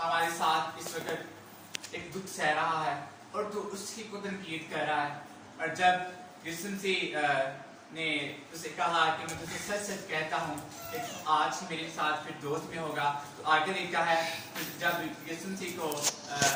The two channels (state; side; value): identical; both; correlation 1.00